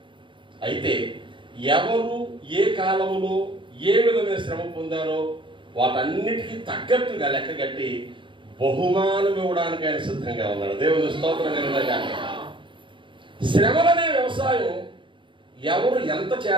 అయితే ఎవరు ఏ కాలంలో ఏ విధమైన శ్రమ పొందారో వాటన్నిటికీ తగ్గట్టుగా లెక్క కట్టి బహుమానం ఇవ్వడానికి ఆయన సిద్ధంగా ఉన్నాడు. దేవుని స్తోత్రం కలుగునుగాక. శ్రమలనే వ్యవసాయం ఎవరు ఎంత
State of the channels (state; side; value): late; left; 0.24 ms